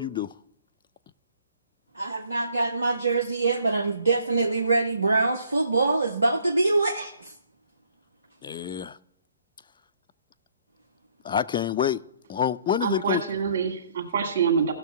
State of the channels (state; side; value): inverted; both; correlation -0.63